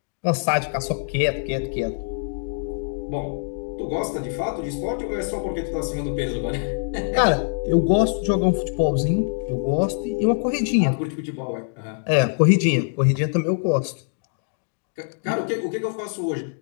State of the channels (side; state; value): right; silent; digital silence